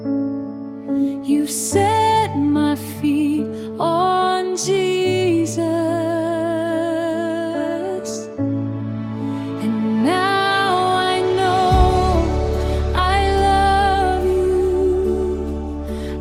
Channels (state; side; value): identical; both; correlation 1.00